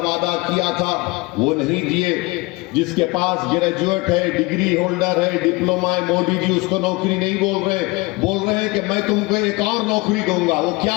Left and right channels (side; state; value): right; quieter; 24.1 dB